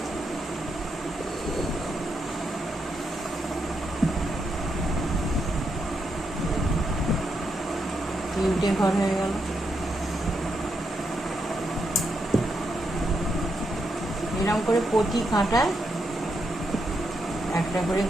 তিনটে ঘর হয়ে গেল। এরকম করে প্রতি কাঁটায় একটা করে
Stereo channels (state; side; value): normal; both; correlation 0.81